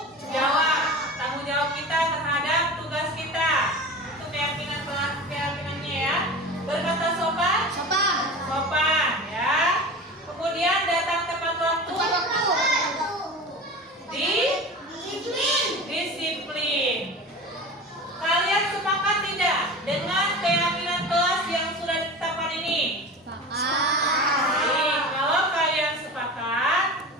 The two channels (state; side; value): normal; both; correlation 0.33